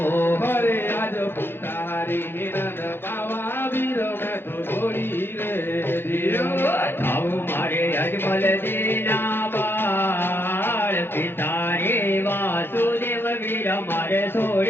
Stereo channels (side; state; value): right; late; 0.10 ms